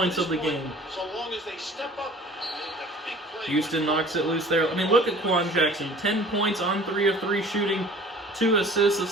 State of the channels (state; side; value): normal; both; correlation 0.47